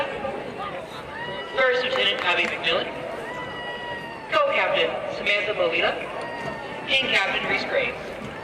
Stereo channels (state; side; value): identical; both; correlation 1.00